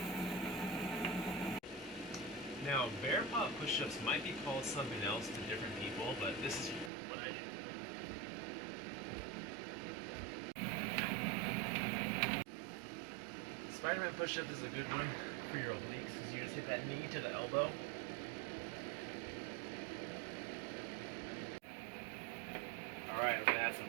Now, bear paw push-ups might be called something else to different people, but this is what I do. Spider-Man push-up is a good one for your obliques because you just hit that knee to the elbow. Alright, I'm going to add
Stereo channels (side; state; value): left; drops out; at 6.9 s